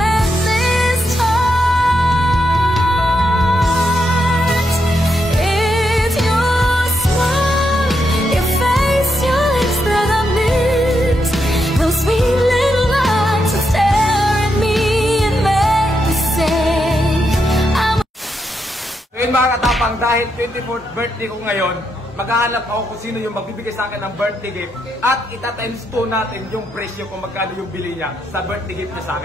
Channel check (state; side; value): normal; both; correlation 0.82